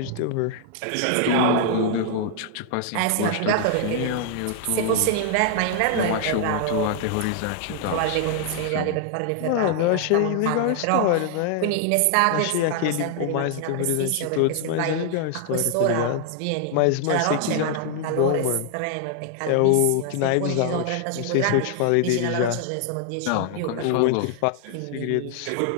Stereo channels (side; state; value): both; different; correlation 0.00